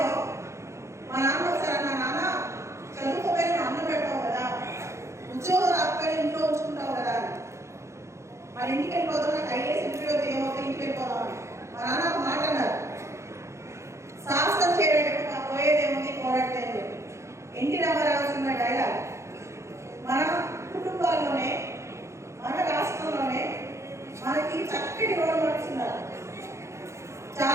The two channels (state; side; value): late; left; 0.14 ms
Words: మా నాన్న ఒకసారి అన్నా, నాన్న చదువుకోపోయి నువ్వు అన్నం పెడతావు కదా, ఉద్యోగం రాకపోయి ఇంట్లో ఉంచుకుంటావు కదా, మరి ఇంటికి వెళ్ళిపోతాం, నాకు ఐఏఎస్ ఇంటర్వ్యూ ఏమవుతుంది, ఇంటికి వెళ్ళిపోదామని. మా నాన్న ఒక మాట అన్నారు, సాహసం చేయడానికి నాకు పోయేదేముంది, పోరాడితే అని చెప్పి. NT Rama Rao cinema dialogue. మన కుటుంబాల్లోనే, మన రాష్ట్రంలోనే మనకి చక్కటి రోల్ మోడల్స్ ఉన్నారు.